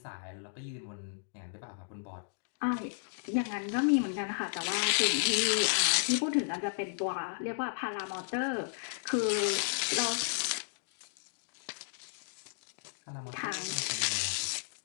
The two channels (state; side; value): silent; right; digital silence